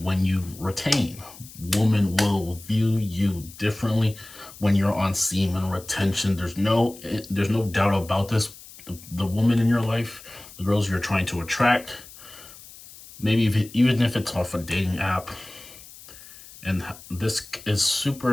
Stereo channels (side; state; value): left; noise; hiss, 19 dB below the sound